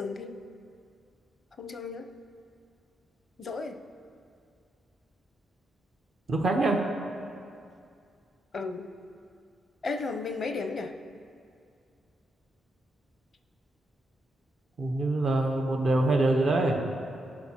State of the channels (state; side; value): normal; both; correlation 0.82